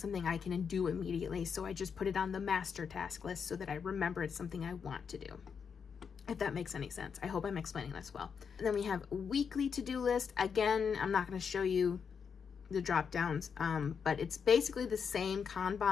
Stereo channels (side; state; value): right; quieter; 6.5 dB